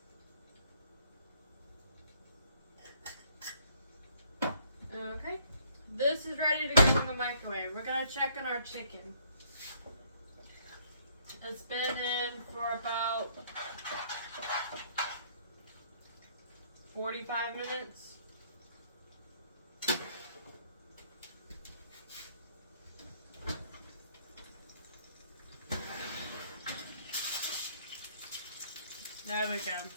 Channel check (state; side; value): inverted; both; correlation -0.64